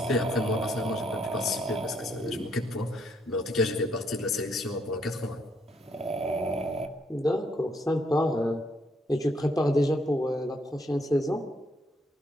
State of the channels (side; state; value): both; normal; correlation 0.71